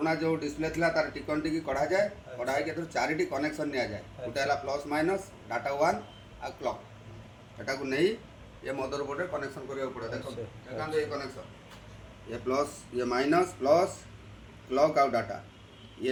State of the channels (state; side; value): identical; both; correlation 1.00